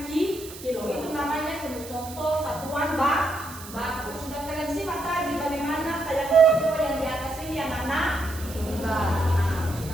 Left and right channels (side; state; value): right; noise; hiss, 15 dB below the sound